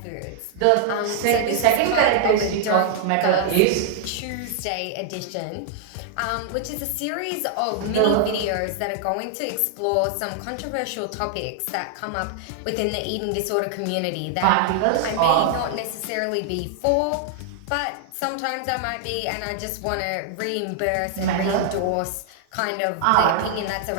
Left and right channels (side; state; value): both; different; correlation -0.01